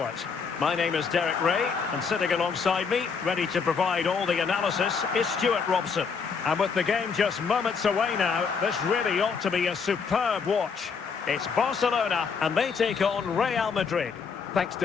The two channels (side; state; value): right; quieter; 5.7 dB